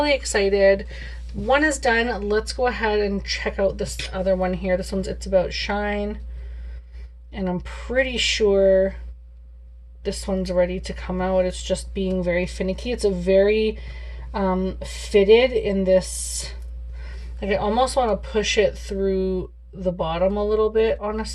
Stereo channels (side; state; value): both; identical; correlation 1.00